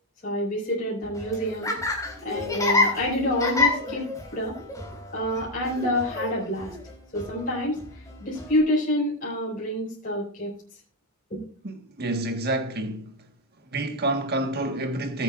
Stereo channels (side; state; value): both; normal; correlation 0.04